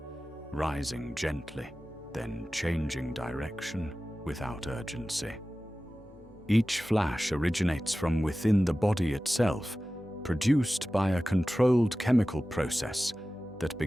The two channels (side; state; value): both; normal; correlation 0.96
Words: rising gently, then changing direction without urgency. Each flash originates from within the body itself, produced by a controlled chemical process that